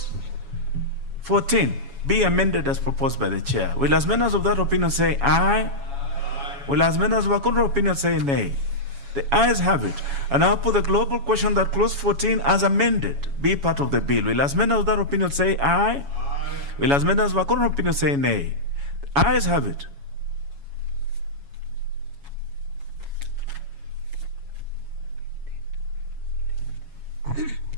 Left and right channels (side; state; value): left; late; 7.2 ms